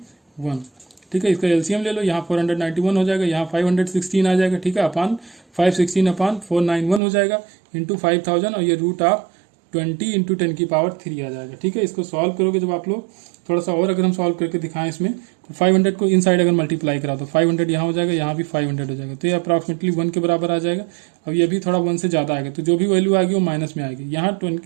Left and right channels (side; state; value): left; drops out; at 7.0 s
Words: ठीक है। इसका एलसीएम ले लो, यहाँ 491 हो जाएगा, यहाँ 516 आ जाएगा, ठीक है, अपॉन 516 अपॉन 491 हो जाएगा इंटू 5000, और ये रूट ऑफ 20 इंटू 10 की पावर 3 आ जाएगा, ठीक है। इसको सॉल्व करोगे जब आप लोग, थोड़ा सा और अगर हम सॉल्व करके दिखाएं इसमें, तो 500 को इनसाइड अगर मल्टीप्लाई करा तो 500 यहाँ हो जाएगा, यहाँ भी 500 हो जाएगा, तो ये अप्रॉक्सीमेटली 1 के बराबर आ जाएगा। अब ये भी थोड़ा 1 से ज़्यादा आएगा, तो जो भी वैल्यू आएगी वो माइनस में आएगी। यहाँ